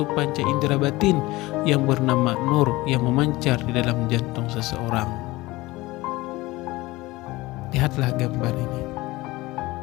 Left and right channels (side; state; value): right; quieter; 20.1 dB